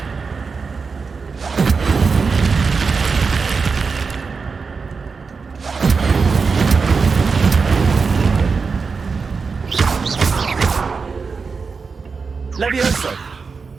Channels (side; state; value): left; quieter; 4.9 dB